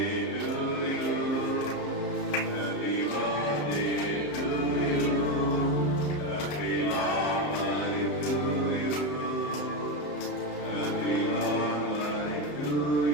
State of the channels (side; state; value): right; late; 34 ms